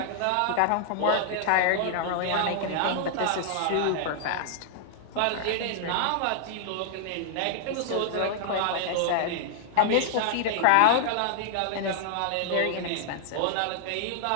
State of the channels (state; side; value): different; both; correlation -0.01